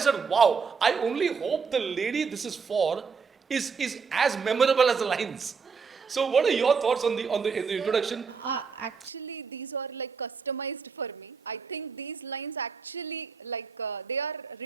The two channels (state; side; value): quieter; left; 5.5 dB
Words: wow, I only hope the lady this is for is as memorable as the lines. So what are your thoughts on the in the introduction? Actually, these are like customized for me. I think these lines actually they are